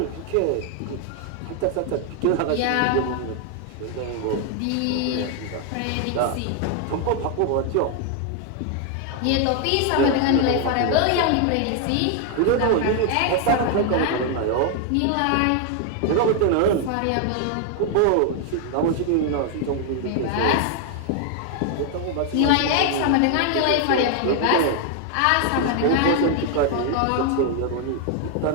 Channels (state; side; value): different; both; correlation 0.00